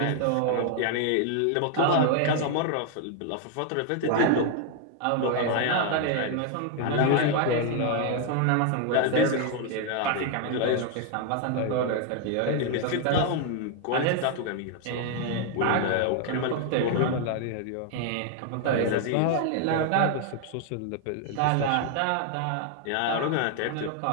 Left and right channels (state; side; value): different; both; correlation 0.00